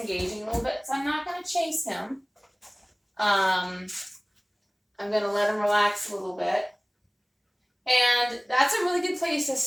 a little bit, so I'm not going to chase him. I'm going to let him relax a little bit. And that's a really good place to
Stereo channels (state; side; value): identical; both; correlation 1.00